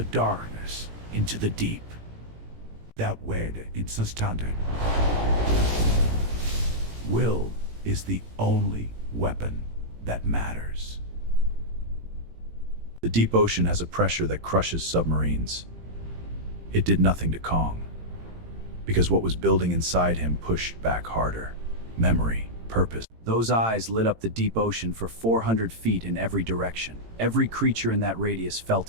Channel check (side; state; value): left; late; 18 ms